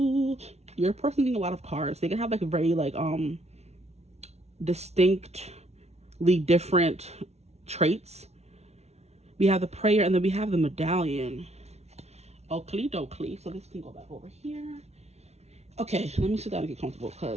Your person getting a lot of cards. They can have like a very like distinctly different traits. We have the prayer, and then we have the medallion. Oakley dokley. So this can go back over here. Okay, let me sit down and get comfortable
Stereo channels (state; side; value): late; left; 0.31 ms